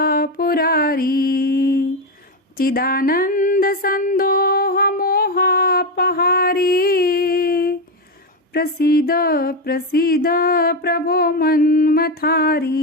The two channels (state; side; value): normal; both; correlation 0.11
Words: पुरारी चिदानन्दसन्दोहमोहापहारी प्रसीद प्रसीद प्रभो